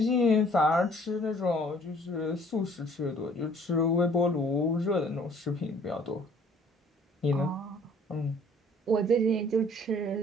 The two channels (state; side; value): normal; both; correlation 0.57